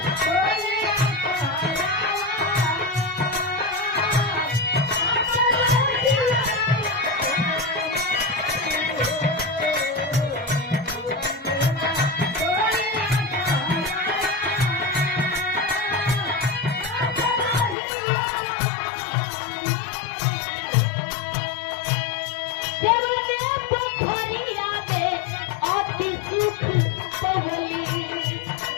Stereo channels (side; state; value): right; drops out; at 17.8 s